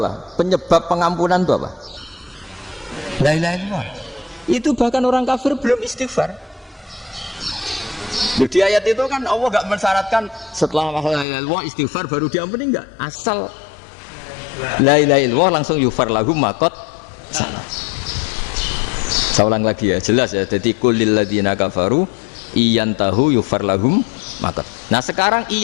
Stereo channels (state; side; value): drops out; right; at 11.2 s